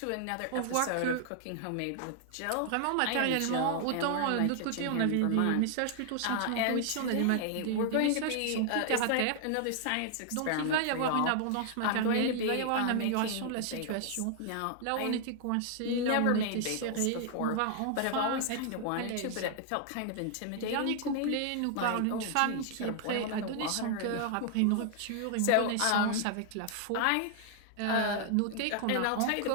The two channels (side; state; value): both; different; correlation 0.00